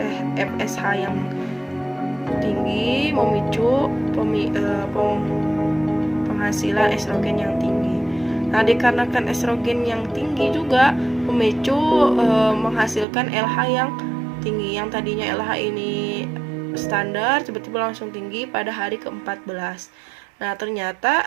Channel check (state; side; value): drops out; left; at 13.1 s